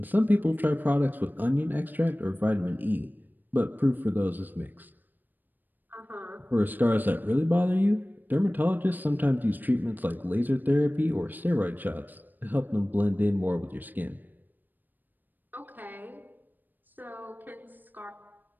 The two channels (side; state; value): left; late; 0.089 ms